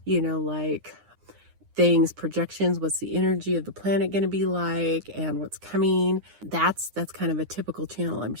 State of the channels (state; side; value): late; left; 9.8 ms